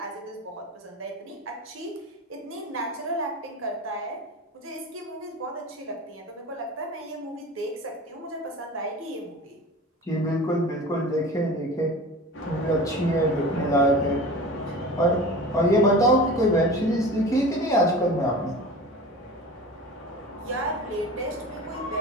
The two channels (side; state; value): both; normal; correlation 0.36